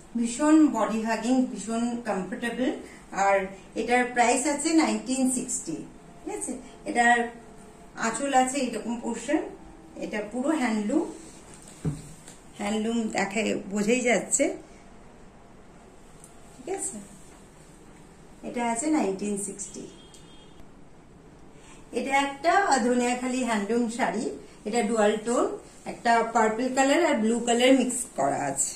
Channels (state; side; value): identical; both; correlation 1.00